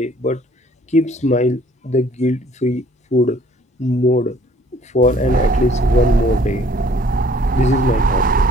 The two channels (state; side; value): normal; both; correlation 0.58